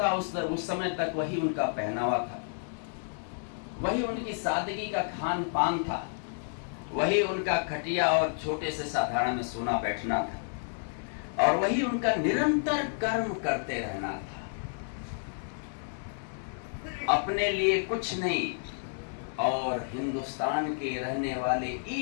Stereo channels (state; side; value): silent; right; 57 dB below the other